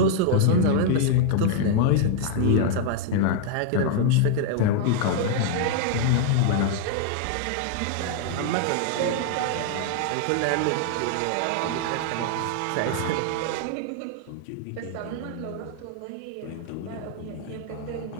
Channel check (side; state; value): both; different; correlation 0.00